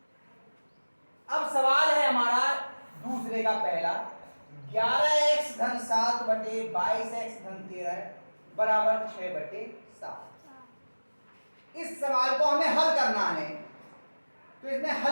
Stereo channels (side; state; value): both; inverted; correlation -1.00